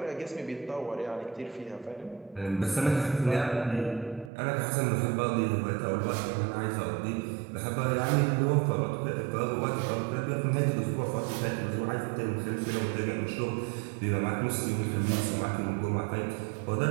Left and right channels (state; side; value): drops out; left; at 4.3 s